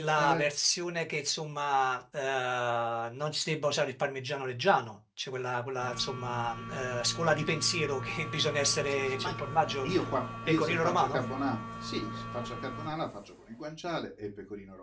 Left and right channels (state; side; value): identical; both; correlation 1.00